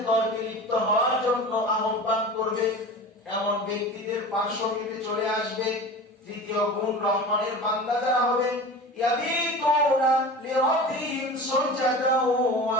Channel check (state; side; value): normal; both; correlation 0.34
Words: তর্কে লিপ্ত হওয়ার জন্য আহ্বান করবে এমন ব্যক্তিদের পার্শ্ব কেটে চলে আসবে তৃতীয় গুণ রহমানের বান্দা যারা হবে ইয়াবিতুনা লিরাব্বিহিম সুজদাও ওয়া